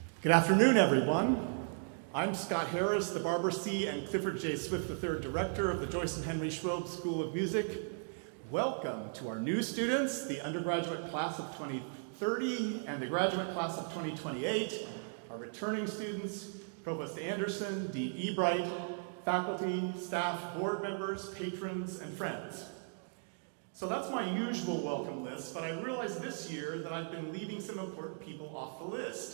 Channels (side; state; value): left; silent; digital silence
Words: Good afternoon, everyone. I'm Scott Harris, the Barbara C. and Clifford J. Swift III Director of the Joyce and Henry Schwob School of Music. Welcome to our new students, the undergraduate class of 2030 and the graduate class of 2028, our returning students, Provost Anderson, Dean Ebright, faculty, staff, board members, patrons, and friends. So that's my usual welcome list, but I realized this year that I've been leaving some important people off the